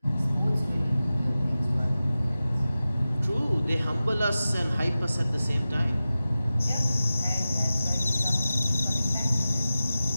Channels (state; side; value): inverted; both; correlation -0.95